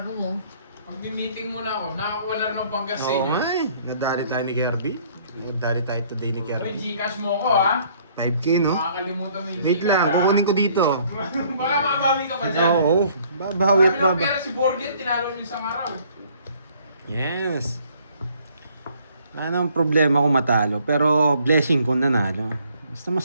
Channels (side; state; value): both; inverted; correlation -0.61